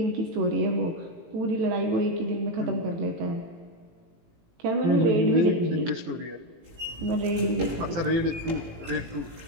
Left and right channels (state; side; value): late; left; 18 ms